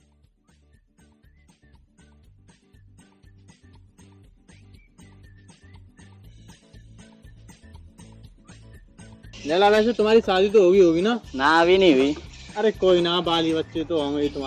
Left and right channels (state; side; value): identical; both; correlation 1.00